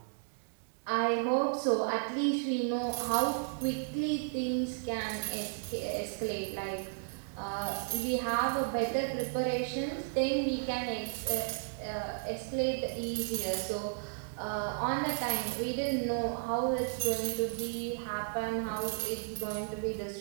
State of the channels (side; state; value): left; silent; digital silence